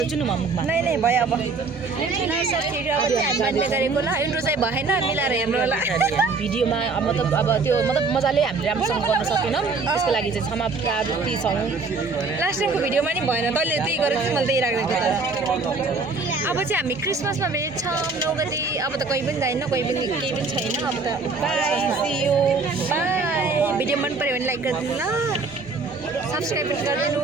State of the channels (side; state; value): left; quieter; 4.0 dB